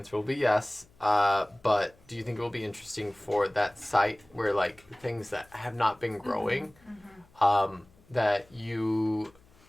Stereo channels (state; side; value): noise; left; hum, 29 dB below the sound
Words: will be yes. But do you think it will be interesting for that site where like things that have not been growing, that you,